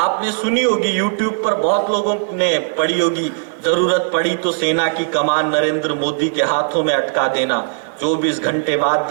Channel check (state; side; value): silent; left; 58 dB below the other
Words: सुनी होगी, यूट्यूब पर बहुत लोगों ने पढ़ी होगी, जरूरत पड़ी तो सेना की कमान नरेंद्र मोदी के हाथों में अटका देना, 24 घंटे बाद